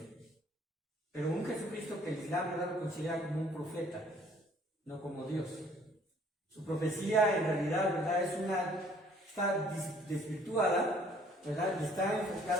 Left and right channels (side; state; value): both; normal; correlation 0.59